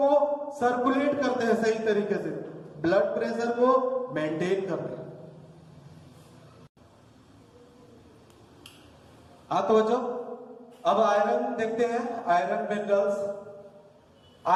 सर्कुलेट करते हैं सही तरीके से, ब्लड प्रेशर को मेंटेन करते हैं। हाँ तो बच्चों अब आयरन देखते हैं, आयरन मिनरल्स।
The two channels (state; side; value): identical; both; correlation 1.00